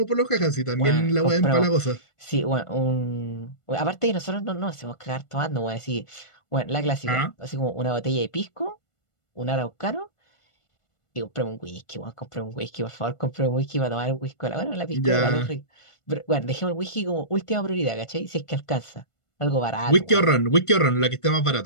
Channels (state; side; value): late; right; 1.5 ms